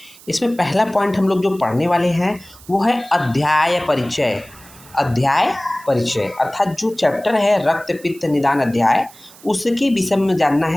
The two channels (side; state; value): right; noise; hiss, 22 dB below the sound